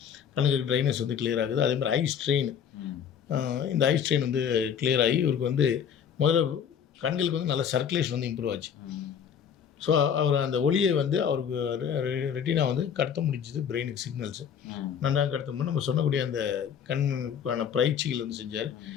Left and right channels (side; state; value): right; quieter; 8.0 dB